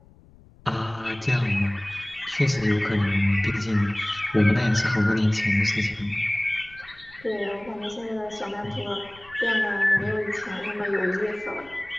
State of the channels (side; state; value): left; noise; rumble, 25 dB below the sound